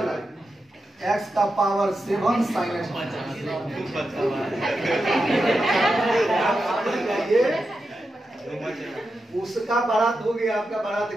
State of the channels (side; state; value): both; normal; correlation 0.89